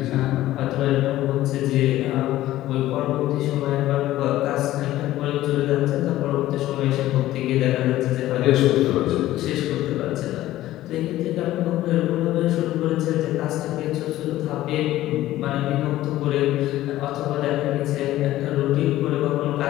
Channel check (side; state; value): right; quieter; 15.0 dB